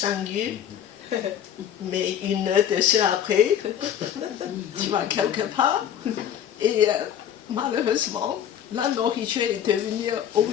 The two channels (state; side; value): quieter; right; 9.7 dB